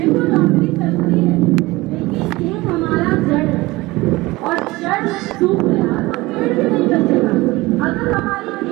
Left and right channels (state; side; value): quieter; left; 20.6 dB